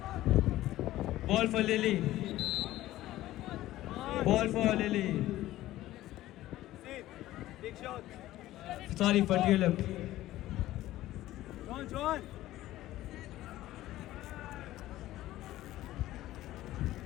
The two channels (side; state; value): right; quieter; 15.3 dB